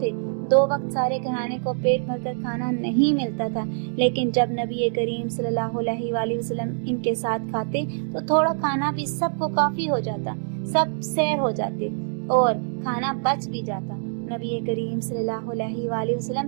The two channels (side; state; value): left; silent; digital silence